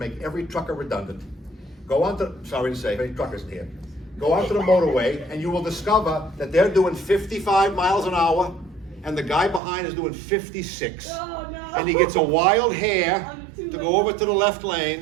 every trucker redundant. Go on to, sorry to say, any truckers here. Go onto the motorway and you will discover that they're doing 55 miles an hour and the guy behind is doing 56. Oh, no. And he gets a wild hair to go over to the left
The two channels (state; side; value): drops out; left; at 9.6 s